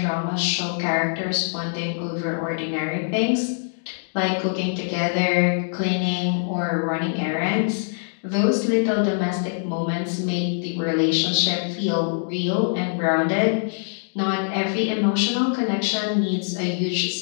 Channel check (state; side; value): silent; right; digital silence